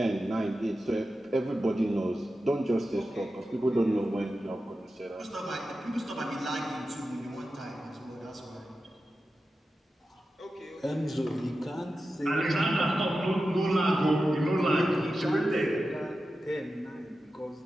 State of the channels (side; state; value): both; normal; correlation 0.92